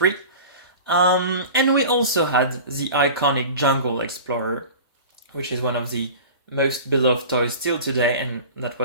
And we also had the iconic Jungle Explorer, which is one of the most beloved toys still today, and that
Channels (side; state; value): both; inverted; correlation -0.36